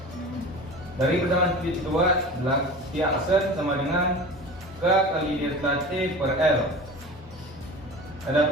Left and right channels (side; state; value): both; normal; correlation 0.35